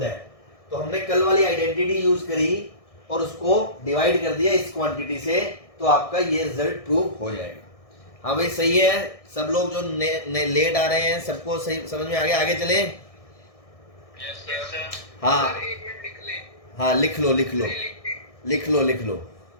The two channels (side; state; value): right; late; 1.6 ms